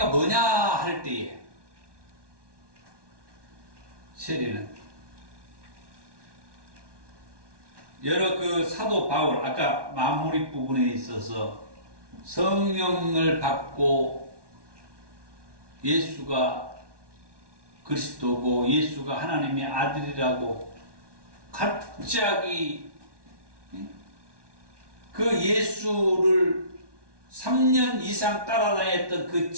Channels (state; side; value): late; left; 1.2 ms